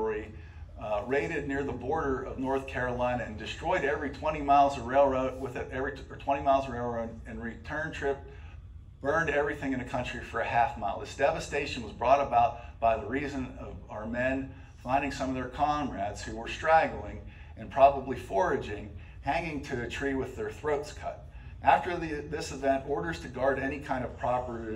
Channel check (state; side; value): identical; both; correlation 1.00